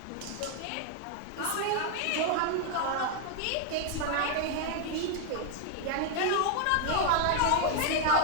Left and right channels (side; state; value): both; different; correlation 0.00